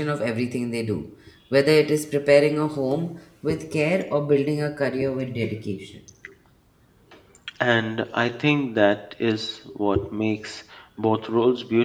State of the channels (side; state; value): both; identical; correlation 1.00